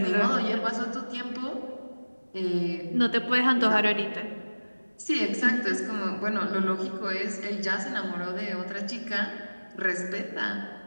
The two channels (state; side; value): inverted; both; correlation -1.00